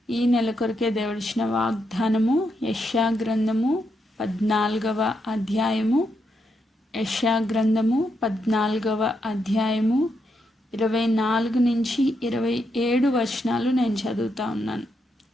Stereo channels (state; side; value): normal; both; correlation 0.81